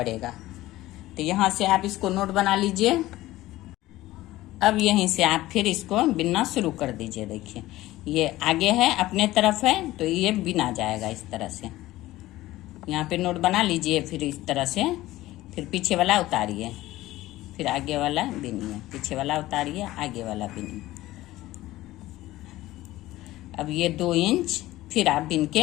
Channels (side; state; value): right; quieter; 16.7 dB